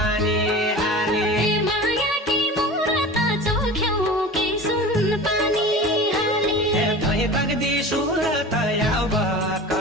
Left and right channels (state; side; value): normal; both; correlation 0.35